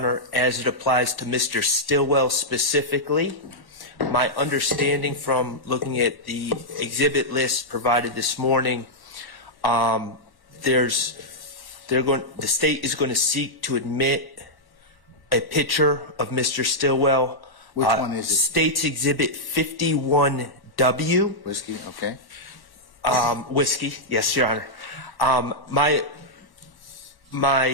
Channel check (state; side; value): late; right; 1.1 ms